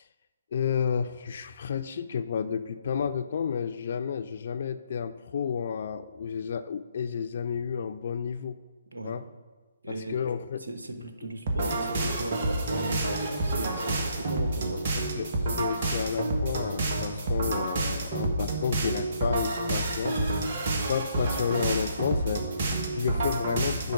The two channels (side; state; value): both; inverted; correlation -0.69